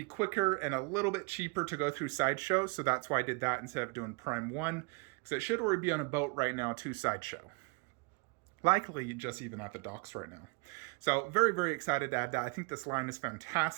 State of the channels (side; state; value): left; quieter; 30.7 dB